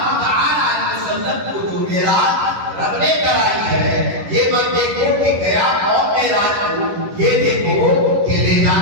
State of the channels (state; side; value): late; left; 11 ms